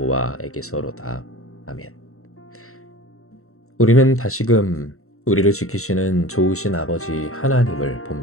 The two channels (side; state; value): right; late; 0.63 ms